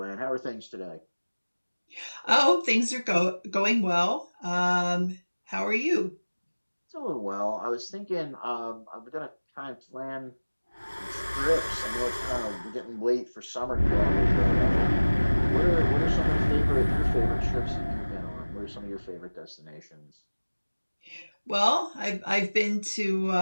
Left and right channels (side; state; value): both; inverted; correlation -1.00